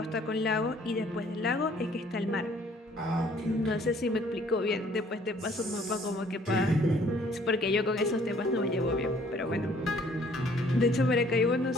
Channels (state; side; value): normal; both; correlation 0.59